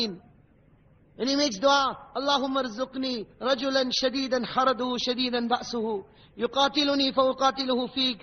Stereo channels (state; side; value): identical; both; correlation 1.00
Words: And he makes dua, Allahumma rzuqni rajulan shadidan haraduhu shadidan ba'suhu, yuqatiluni fa uqatiluhu